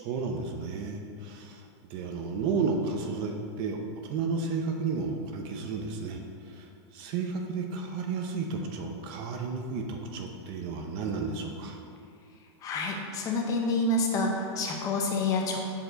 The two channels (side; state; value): both; normal; correlation -0.03